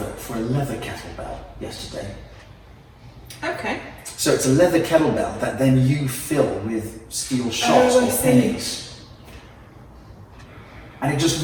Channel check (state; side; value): identical; both; correlation 1.00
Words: for a leather kettlebell yesterday. Okay. So it's a leather kettlebell that then you fill with steel shots or pennies. And it just